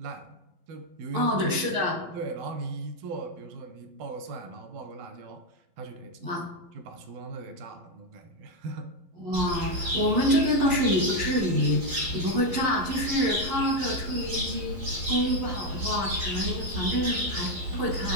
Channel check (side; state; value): left; late; 11 ms